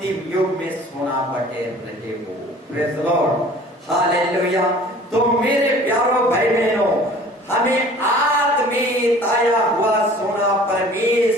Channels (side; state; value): both; normal; correlation 0.48